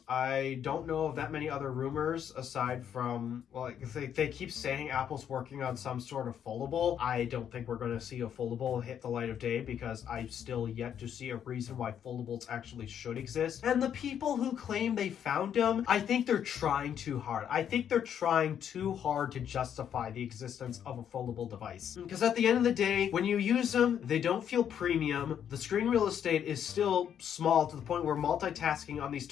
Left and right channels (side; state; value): right; quieter; 9.0 dB